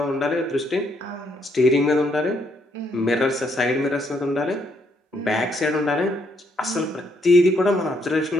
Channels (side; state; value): both; normal; correlation 0.73